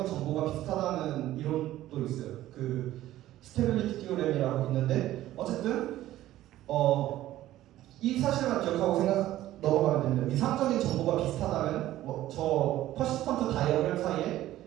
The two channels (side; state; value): left; quieter; 14.4 dB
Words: 정보가 비슷하다는 이론도 있어요. 스테빌리티 티오렘이라고 있는데 어쨌든 이 사실만 기억하고 넘어가면 됩니다. 위상적인 정보가 비슷하다면 저 퍼시스턴트 다이어그램 사이에